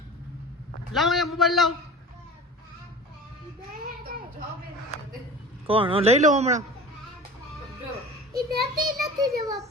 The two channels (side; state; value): both; normal; correlation 0.38